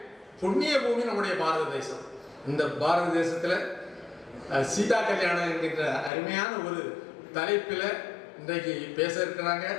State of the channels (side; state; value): right; drops out; at 6.1 s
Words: புண்ணிய பூமி நம்முடைய பாரத தேசம். இந்த பாரத தேசத்துல சீதா கல்யாணம் என்கின்ற அருமையான ஒரு தலைப்பில் இன்றைக்கு பேச இருக்கிறாங்க.